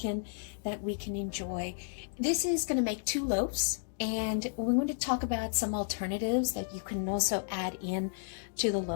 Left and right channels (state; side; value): silent; right; digital silence